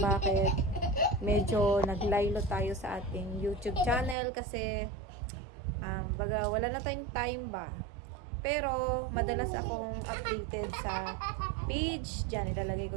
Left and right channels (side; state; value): left; drops out; at 4.2 s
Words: medyo naglaylo tayo sa ating YouTube channel kasi baga wala na tayong time ba. Pero madalas akong updated sa page dyan, ilalagay